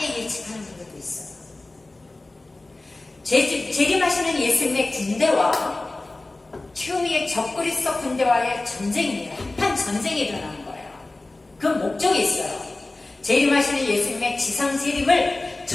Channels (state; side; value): quieter; right; 3.0 dB